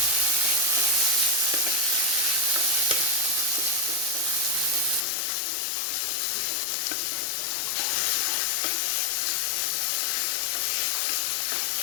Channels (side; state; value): right; drops out; at 5.0 s